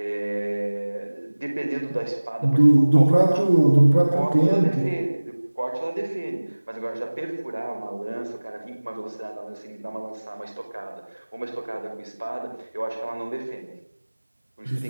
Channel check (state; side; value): inverted; both; correlation -1.00